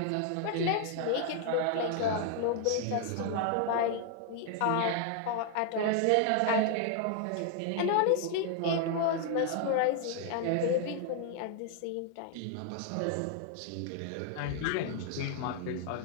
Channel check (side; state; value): both; different; correlation 0.00